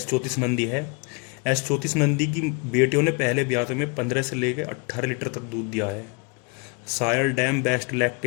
नंदी है। S34 नंदी की बेटियों ने पहले ब्याह में 15 से लेकर 18 लीटर तक दूध दिया है। Sire dam best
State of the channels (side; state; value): right; quieter; 32.6 dB